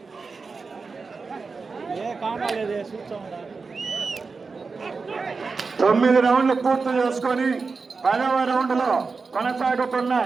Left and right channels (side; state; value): left; quieter; 4.5 dB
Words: 9 రౌండ్లు పూర్తి చేసుకొని 10వ రౌండ్లో